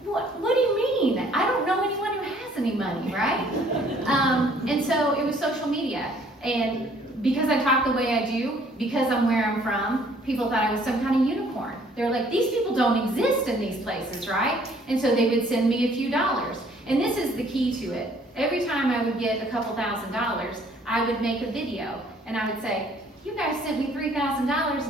what do you mean? I don't know anyone who has any money, right? And so it was social media. And because I talk the way I do, because I'm where I'm from, people thought I was some kind of unicorn. They're like, these people don't exist in these places, right? And so they would send me a few dollars. And this is the key to it. Every time I would get a couple $1,000s, I would make a video. And I would say, you guys sent me $3,000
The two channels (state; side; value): normal; both; correlation 0.60